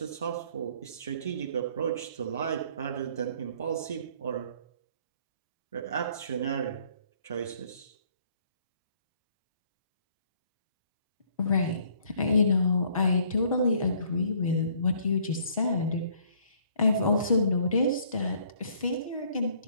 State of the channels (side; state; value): both; inverted; correlation -0.61